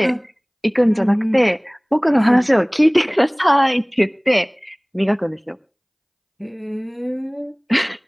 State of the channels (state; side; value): identical; both; correlation 1.00